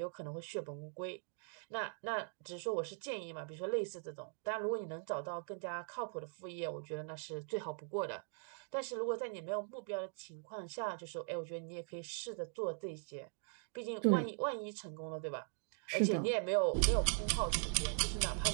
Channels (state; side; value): silent; left; 51 dB below the other